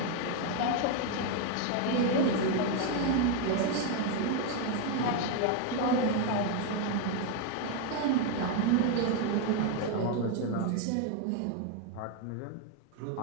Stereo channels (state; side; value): different; both; correlation 0.01